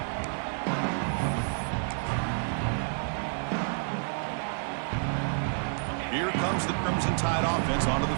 Here comes the Crimson Tide offense onto the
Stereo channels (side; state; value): left; silent; 55 dB below the other